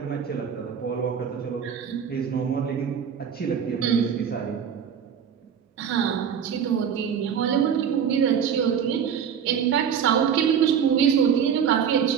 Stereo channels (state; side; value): quieter; left; 7.8 dB